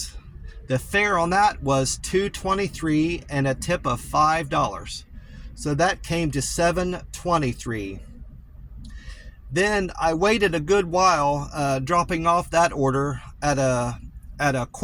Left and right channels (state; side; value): identical; both; correlation 1.00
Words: The fare on that was $2.23 and a tip of $5. So that came to $7.23. Then I waited a good while dropping off that order at a